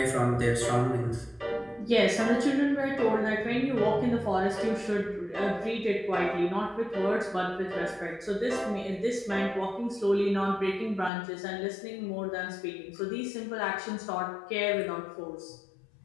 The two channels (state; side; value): drops out; right; at 11.1 s